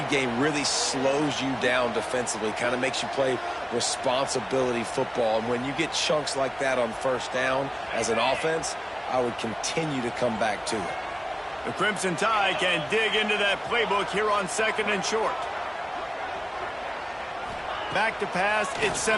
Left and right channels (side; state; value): both; identical; correlation 1.00